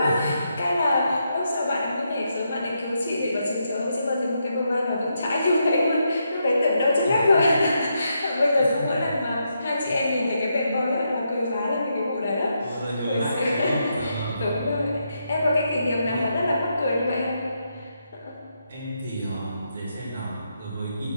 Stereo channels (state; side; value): inverted; both; correlation -0.81